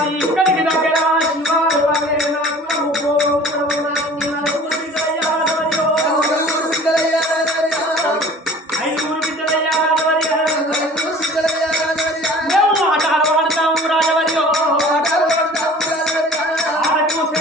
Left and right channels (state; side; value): normal; both; correlation 0.45